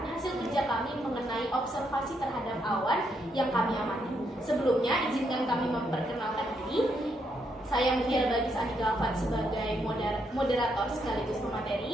hasil kerja kami mengenai observasi terhadap awan yang kami amati. Sebelumnya, izinkan kami memperkenalkan diri. Saya Mutiara Bagis Andika Alfat sebagai moderator sekaligus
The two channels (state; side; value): normal; both; correlation 0.77